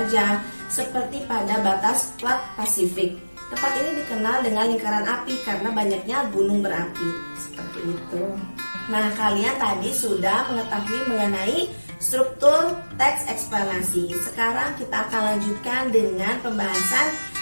seperti pada batas plat Pasifik. Tempat ini dikenal dengan lingkaran api karena banyaknya gunung berapi. Seperti itu. Nah, kalian tadi sudah mengetahui mengenai struktur teks eksplanasi. Sekarang kita akan lanjutkan dengan pembahasan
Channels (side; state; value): both; inverted; correlation -1.00